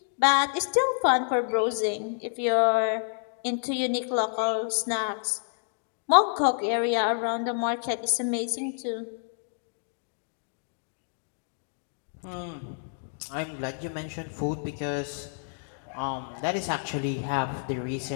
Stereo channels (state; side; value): silent; right; digital silence